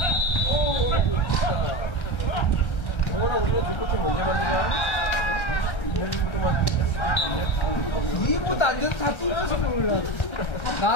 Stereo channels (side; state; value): right; late; 1.3 ms